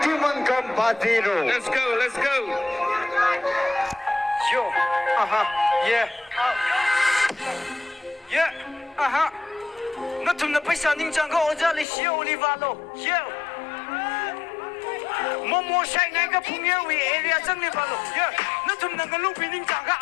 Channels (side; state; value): right; drops out; at 11.9 s